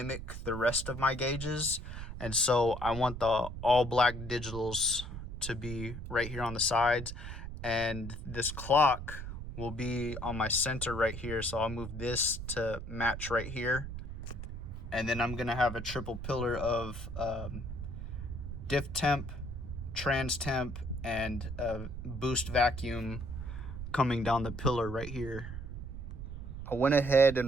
the rest of my gauges. And so I want the all black digitals to be right here on the sides, and this clock will be on my center right here. So I'll move this to match right here. And then I'm gonna have a triple pillar of diff temp, trans temp, and boost vacuum coming down the pillar right here. I went ahead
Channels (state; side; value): noise; right; rumble, 8 dB below the sound